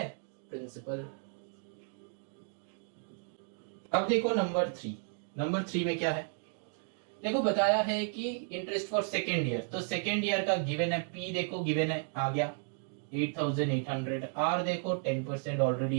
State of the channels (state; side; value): silent; left; 55 dB below the other